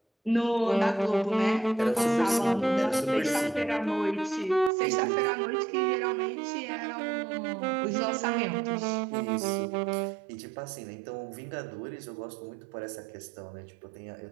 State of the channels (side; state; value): left; drops out; at 4.7 s